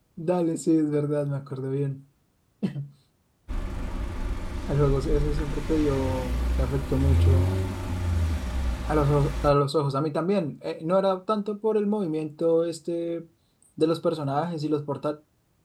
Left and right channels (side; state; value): both; identical; correlation 1.00